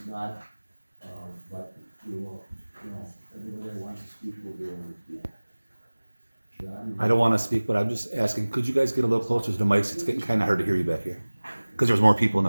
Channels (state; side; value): inverted; both; correlation -1.00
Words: not, but we will, everybody that wants to speak will be able to speak. John? I don't want to speak, but I'm just asking, could you guys get a little closer to the mics? It's getting kind of hard to hear you back here. Because there's more people in